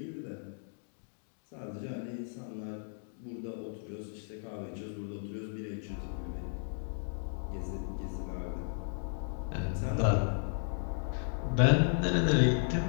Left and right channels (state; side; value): silent; right; digital silence